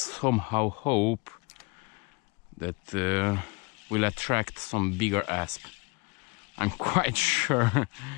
hope that will attract some bigger ASP. I'm quite sure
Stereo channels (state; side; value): quieter; right; 29.3 dB